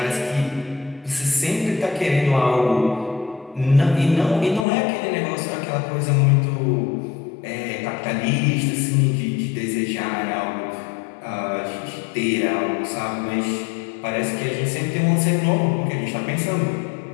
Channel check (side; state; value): right; drops out; at 4.7 s